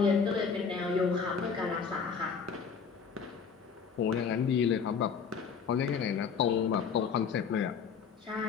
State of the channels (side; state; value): right; quieter; 6.2 dB